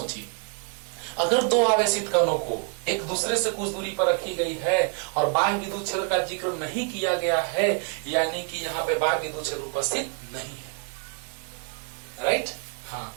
अगर 2 आवेशित कणों को एक दूसरे से कुछ दूरी पर रखी गई है और बाह्य विद्युत क्षेत्र का जिक्र नहीं किया गया है, यानी कि यहाँ पे बाह्य विद्युत क्षेत्र उपस्थित नहीं है। राइट, हाँ,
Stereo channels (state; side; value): quieter; left; 39.7 dB